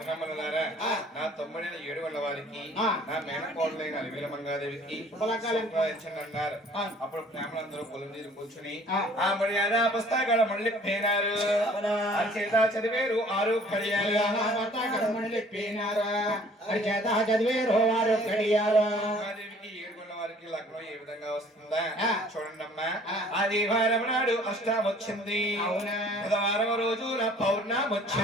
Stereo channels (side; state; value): both; normal; correlation 0.54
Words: నా తమ్ముడైన ఏడుగొండ వారికి నా మేనకోడలైన అలివేల మంగాదేవికి అన్నారు అప్పుడు బ్రాహ్మణులందరూ పొలం తీరు కూర్చుని ఆ మర్యాద పుస్తకాల మళ్ళీ పేనారు చేత చదివేరు 6 కడియాలు చదివేరు 6 కడియాలు మంగాదేవికి ఏడుగొండ వారికి లగ్నం ఏ విధంగా వస్తుందా చూడండి అమ్మా ఆదివారం నాడు అష్టం వచ్చింది బుధవారం రోజు పౌర్ణమి